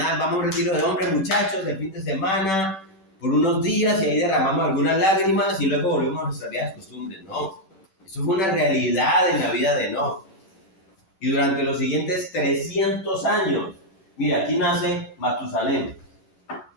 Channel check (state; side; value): late; right; 10 ms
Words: Vamos a un retiro de hombres, muchachos, de fin de semana, por unos días y ahí derramamos algunas lágrimas y luego volvemos a nuestras viejas costumbres. No, eso fue una realidad en la vida de Enoc. Y durante los siguientes 300 años, mira, aquí nace Matusalén.